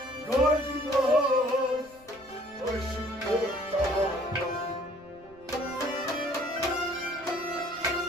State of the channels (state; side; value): noise; right; rumble, 26 dB below the sound